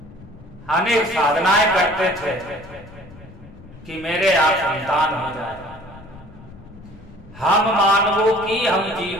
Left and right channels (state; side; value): noise; left; rumble, 20 dB below the sound